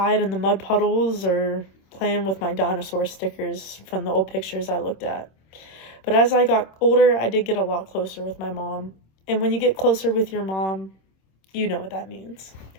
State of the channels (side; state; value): right; late; 26 ms